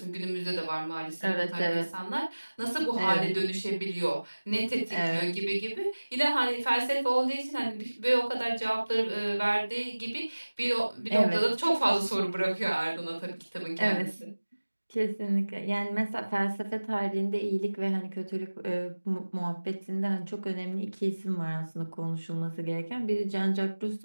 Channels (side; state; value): both; inverted; correlation -1.00